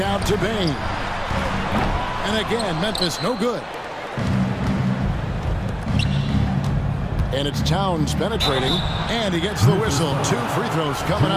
out to Bain. And again, Memphis no good. And it's Towns penetrating. And he gets the whistle. 2 free throws coming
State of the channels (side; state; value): both; identical; correlation 1.00